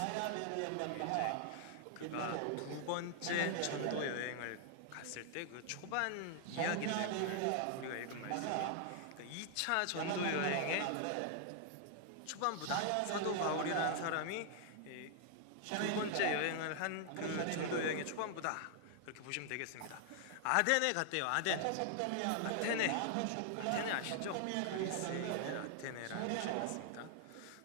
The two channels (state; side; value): different; both; correlation 0.00